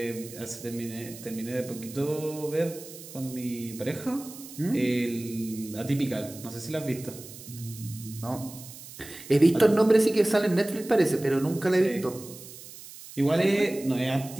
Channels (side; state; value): right; noise; hiss, 15 dB below the sound